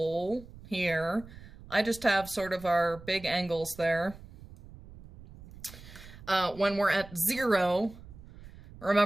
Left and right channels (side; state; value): right; noise; rumble, 18 dB below the sound